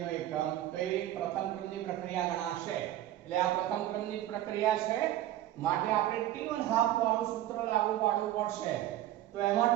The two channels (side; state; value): left; quieter; 13.5 dB